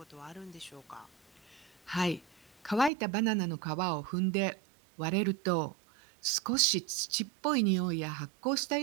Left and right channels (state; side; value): drops out; left; at 2.9 s